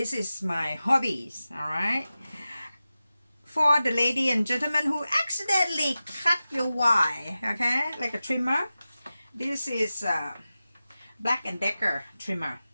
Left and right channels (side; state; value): both; inverted; correlation -0.94